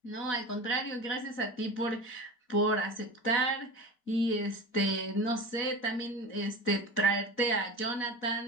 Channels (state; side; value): late; right; 4.1 ms